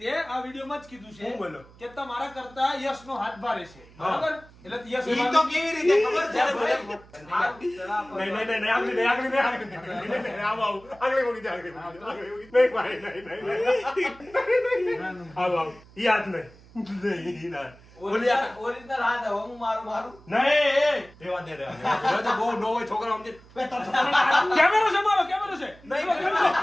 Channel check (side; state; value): right; noise; hum, 24 dB below the sound